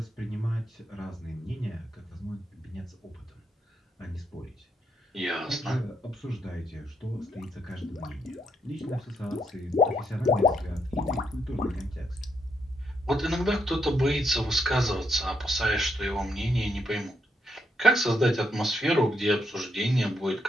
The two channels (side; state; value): both; normal; correlation 0.77